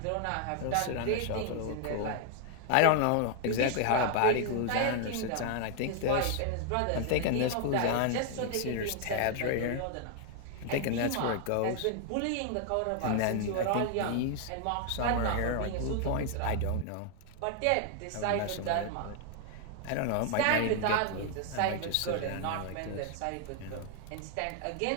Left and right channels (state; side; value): different; both; correlation 0.00